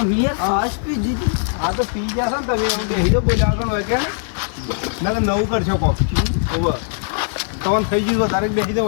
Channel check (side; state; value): right; silent; digital silence